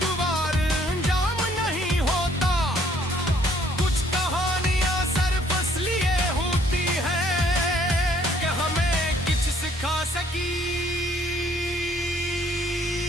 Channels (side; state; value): both; normal; correlation 0.63